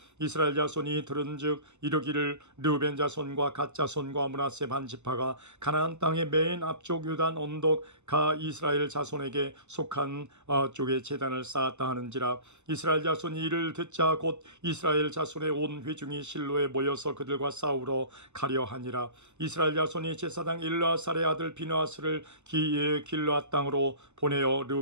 이스라엘 자손이 들은즉 이르기를 르우벤 자손과 갓 자손과 므낫세 반 지파가 가나안 땅의 맨 앞쪽 요단 언덕가 이스라엘 자손에게 속한 쪽에 제단을 쌓았다 하는지라. 이스라엘 자손이 이를 듣자 곧 이스라엘 자손의 온 회중이 실로에 모여서 그들과 싸우러 가려 하니라. 이스라엘 자손이 제사장 일라살의 아들 비느하스를 길르앗 땅으로 보내어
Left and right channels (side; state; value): left; late; 0.83 ms